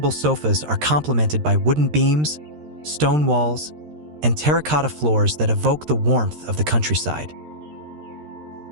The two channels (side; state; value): left; late; 13 ms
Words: sofas are complemented by wooden beams, stone walls, and terracotta floors that evoke the warmth of the countryside.